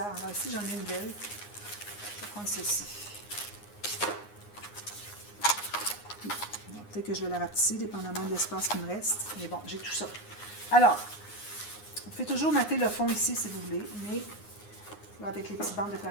Alors, ici, j'en ai une belle. Je vais prendre celle-ci. Peut-être que je vais la rapetisser, dépendamment de l'espace qui me reste. Mais bon, j'ai tout ça. Alors, vous pouvez toujours mater le fond ici si vous voulez, mais là, avec les petites bandes de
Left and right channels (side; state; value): right; late; 9.7 ms